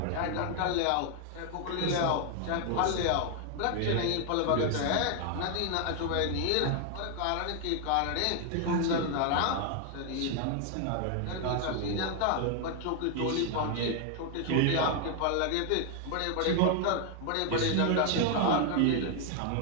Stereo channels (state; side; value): different; both; correlation 0.00